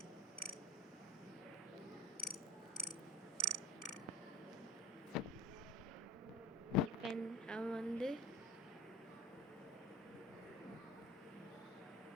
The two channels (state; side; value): normal; both; correlation 0.38